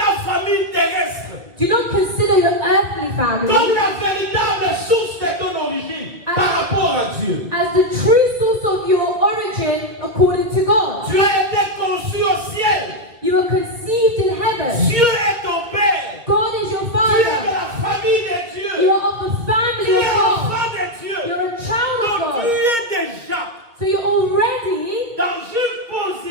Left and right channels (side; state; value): left; late; 2.0 ms